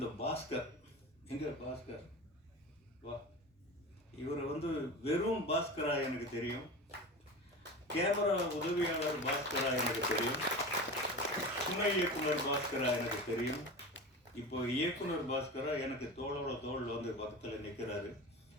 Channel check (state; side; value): normal; both; correlation 0.30